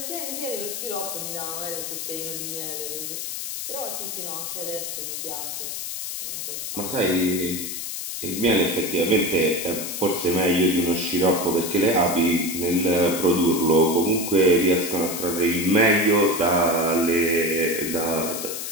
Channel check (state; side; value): noise; left; hiss, 5 dB below the sound